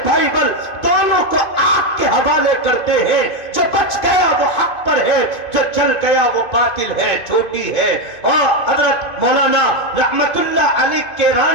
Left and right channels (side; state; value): right; late; 2.2 ms